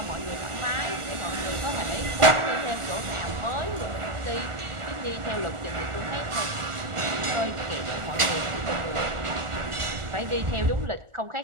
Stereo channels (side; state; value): left; late; 1.4 ms